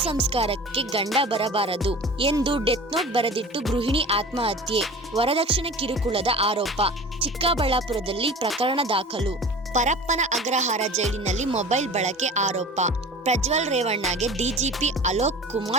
ಸಂಸ್ಕಾರಕ್ಕೆ ಗಂಡ ಬರಬಾರದು ಎಂದು ಡೆತ್ ನೋಟ್ ಬರೆದಿಟ್ಟು ಗೃಹಿಣಿ ಆತ್ಮಹತ್ಯೆ. ವರದಕ್ಷಿಣೆ ಕಿರುಕುಳದ ಆರೋಪ. ಚಿಕ್ಕಬಳ್ಳಾಪುರದಲ್ಲಿ ಪ್ರಕರಣ ದಾಖಲು. ಪರಪ್ಪನ ಅಗ್ರಹಾರ ಜೈಲಿನಲ್ಲಿ ಮೊಬೈಲ್ ಬಳಕೆ ಆರೋಪ. ಪ್ರಜ್ವಲ್ ರೇವಣ್ಣಗೆ ಡಿಜಿಪಿ ಅಲೋಕ್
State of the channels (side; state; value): both; normal; correlation 0.39